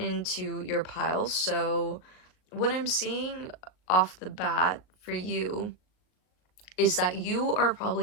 your pile. So what I'm seeing off the bat for you is that you are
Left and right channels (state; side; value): late; right; 38 ms